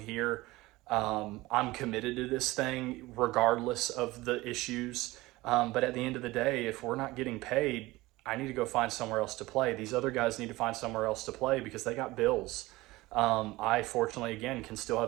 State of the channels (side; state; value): left; quieter; 19.7 dB